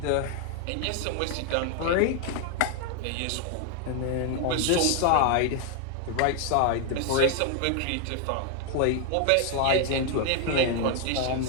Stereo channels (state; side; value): different; both; correlation 0.00